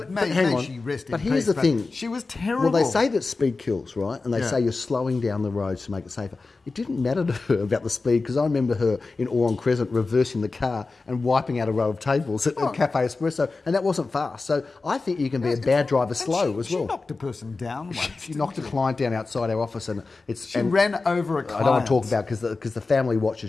May she rest in but here's peace, the thing. She was terrible. Well, they say that speed kills, right? And they say you're slowing down the roads to make it safer. It didn't matter to her about the speed, because I remember her in Oran Crescent reversing the car and wiping out a row of tables at Cafe Espresso, and that wasn't fast. So I think you can be a bad driver slow as well. She knocked a person down once. She knocked a client down outside our office, and she ran over a client. I don't want to talk about because the family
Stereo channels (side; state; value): right; quieter; 3.8 dB